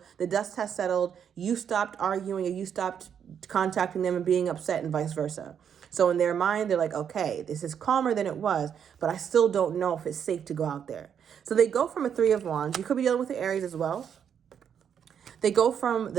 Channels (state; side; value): quieter; left; 8.1 dB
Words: the dust has settled. You stopped arguing or you stopped contacting them and being upset and vice versa. So in their mind, they're like, okay, this is calmer than it was, but I still don't know if it's safe to go out there. So they go from a Three of Wands. You could be dealing with the Aries as well. They go from